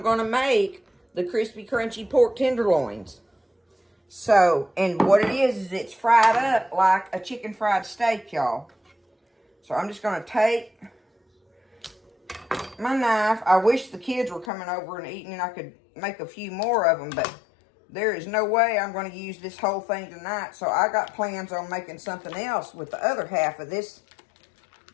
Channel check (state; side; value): drops out; right; at 14.5 s